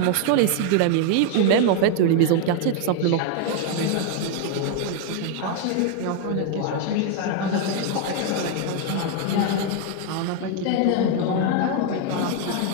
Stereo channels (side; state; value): both; different; correlation 0.00